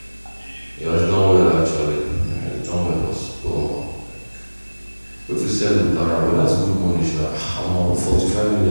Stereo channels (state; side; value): inverted; both; correlation -1.00